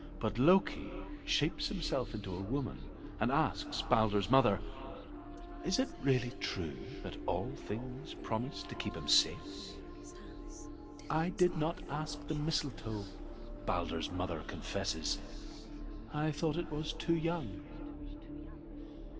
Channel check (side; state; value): both; identical; correlation 1.00